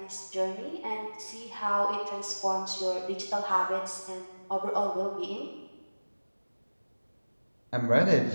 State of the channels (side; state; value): both; inverted; correlation -1.00